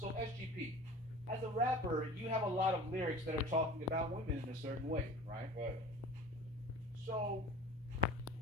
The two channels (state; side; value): normal; both; correlation 0.40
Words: SGP, as a rapper, you have a lot of lyrics that are talking about women in a certain way, right? Right. So